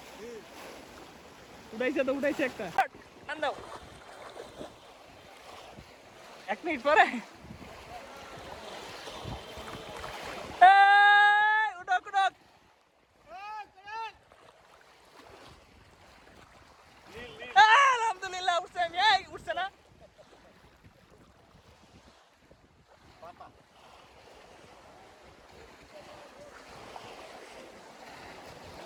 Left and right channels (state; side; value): identical; both; correlation 1.00